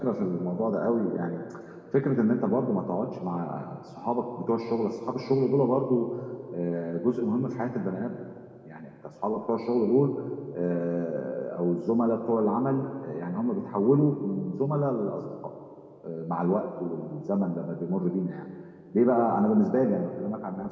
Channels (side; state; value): both; identical; correlation 1.00